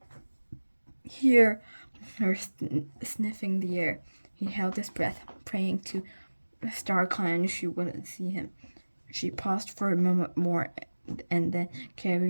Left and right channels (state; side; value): inverted; both; correlation -1.00